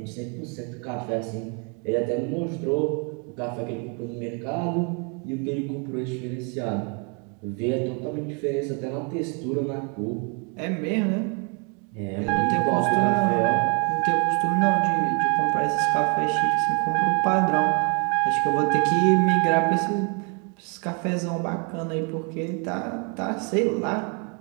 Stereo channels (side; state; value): left; quieter; 35.8 dB